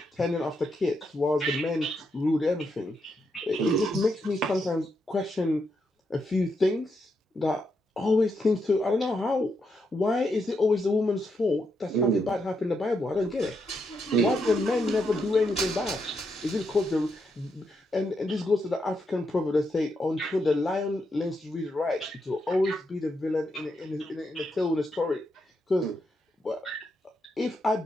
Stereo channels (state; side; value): normal; both; correlation 0.81